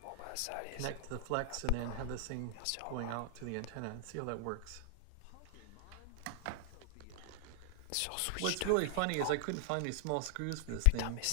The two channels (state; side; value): different; both; correlation 0.00